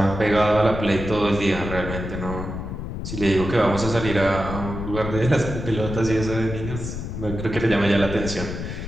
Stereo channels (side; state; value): left; noise; rumble, 6 dB below the sound